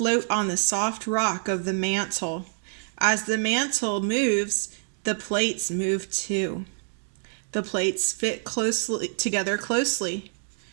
on the soft rock of the mantle. As the mantle moves, the plates move too. The plates fit together closely.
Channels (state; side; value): silent; left; digital silence